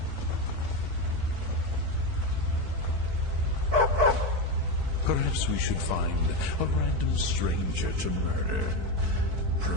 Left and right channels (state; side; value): late; left; 4.6 ms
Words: Perhaps we should find a random stranger to murder.